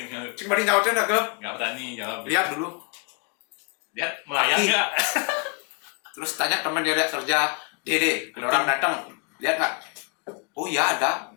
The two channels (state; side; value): quieter; right; 34.5 dB